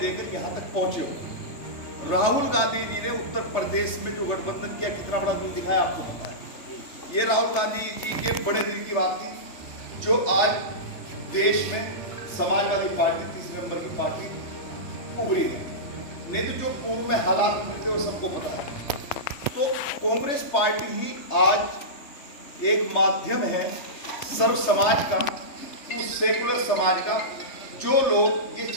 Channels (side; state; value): right; late; 3.3 ms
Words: यहाँ तक पहुंचे हो। राहुल गांधी जी ने उत्तर प्रदेश में जो गठबंधन किया कितना बड़ा दिल दिखाया आपको पता है। ये राहुल गांधी जी के बड़े दिल की बात थी जो आज देश में समाजवादी पार्टी तीसरे नंबर की पार्टी उभरी है। नहीं तो जो पूर्व में हालात मिलते वो सबको पता है। तो कांग्रेस पार्टी ही आज एक माध्यम है सर्व समाज का, उस सेकुलर समाज का जो लोग ये